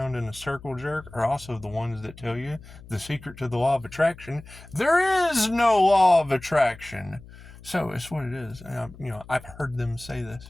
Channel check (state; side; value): noise; left; hum, 19 dB below the sound